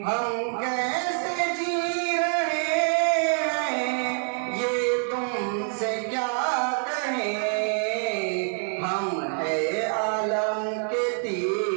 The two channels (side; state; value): left; silent; 59 dB below the other